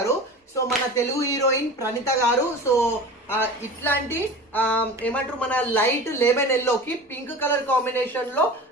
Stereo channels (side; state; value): both; normal; correlation 0.34